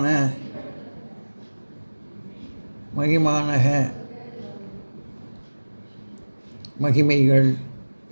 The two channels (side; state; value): both; inverted; correlation -1.00